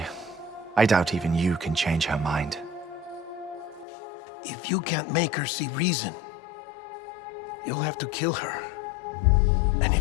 I doubt even you can change her mind. If you can't make her see reason, you'll have to kill her. And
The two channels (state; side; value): drops out; right; at 3.9 s